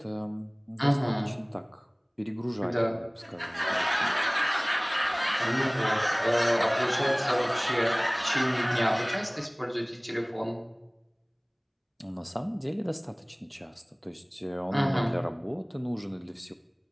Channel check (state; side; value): identical; both; correlation 1.00